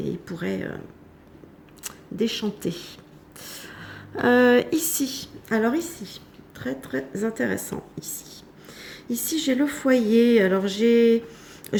ils pourraient déchanter. Ici, très très intéressant ici. Ici, j'ai le foyer. Alors, je ne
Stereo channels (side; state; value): both; identical; correlation 1.00